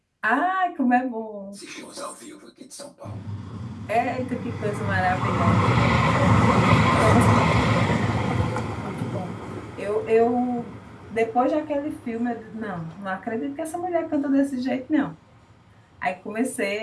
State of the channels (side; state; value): both; identical; correlation 1.00